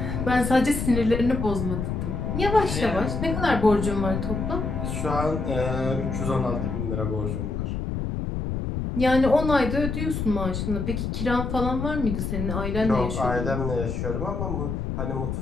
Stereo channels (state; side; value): noise; left; rumble, 3 dB below the sound